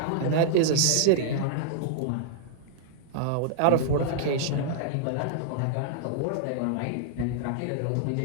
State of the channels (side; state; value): both; different; correlation -0.01